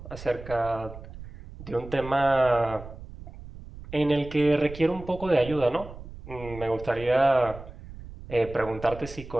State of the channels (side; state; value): right; noise; rumble, 14 dB below the sound